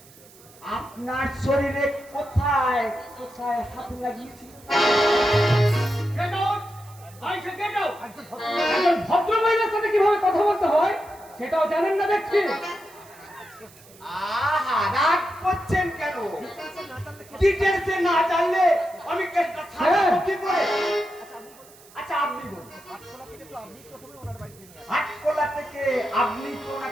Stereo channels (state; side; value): noise; right; hiss, 24 dB below the sound